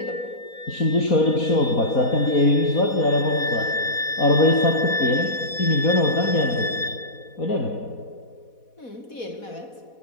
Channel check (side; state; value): right; late; 4.1 ms